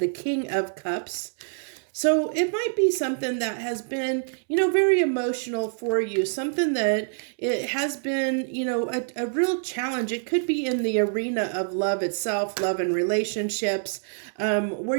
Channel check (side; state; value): left; silent; 61 dB below the other